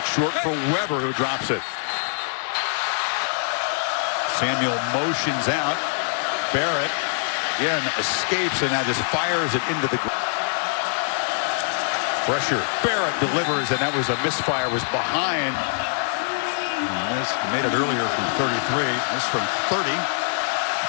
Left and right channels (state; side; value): silent; right; digital silence